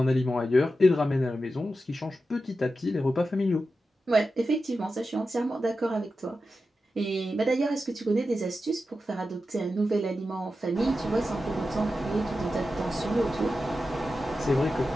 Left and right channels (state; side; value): normal; both; correlation 0.91